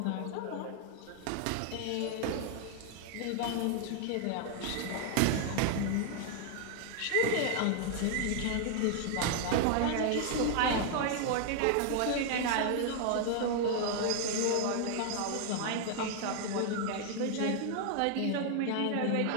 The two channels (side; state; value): both; different; correlation 0.00